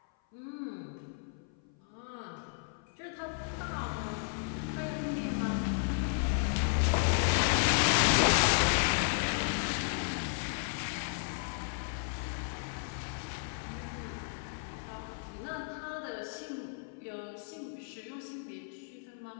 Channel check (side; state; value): right; silent; 55 dB below the other